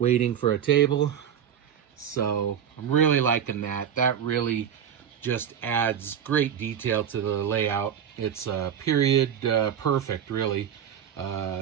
for a table. So I'm really liking that. That really just adds great detail to the layout. It's period perfect, really.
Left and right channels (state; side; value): quieter; left; 8.8 dB